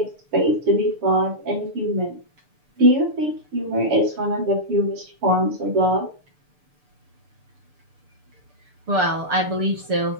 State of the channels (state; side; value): late; left; 6.8 ms